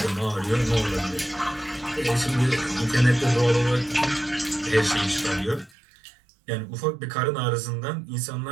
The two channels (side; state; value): left; drops out; at 5.7 s